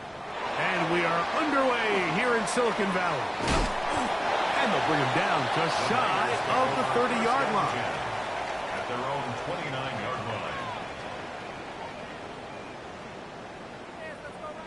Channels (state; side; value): identical; both; correlation 1.00